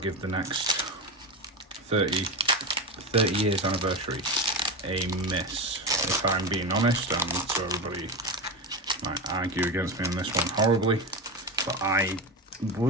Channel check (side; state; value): both; normal; correlation 0.19